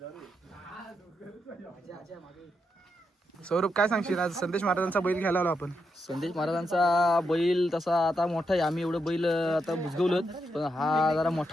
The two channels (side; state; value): both; normal; correlation 0.83